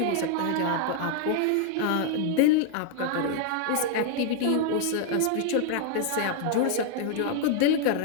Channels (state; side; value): different; both; correlation 0.00